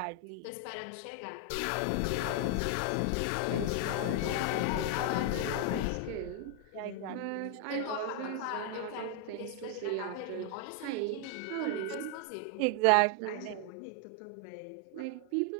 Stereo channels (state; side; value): different; both; correlation 0.00